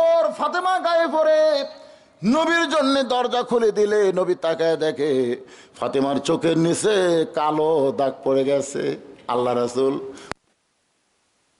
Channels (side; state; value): both; identical; correlation 1.00